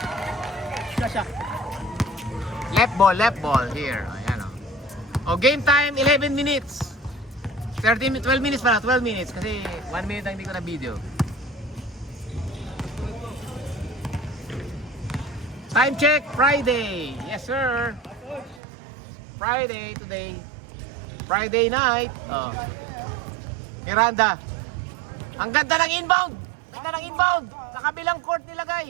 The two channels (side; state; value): left; drops out; at 18.6 s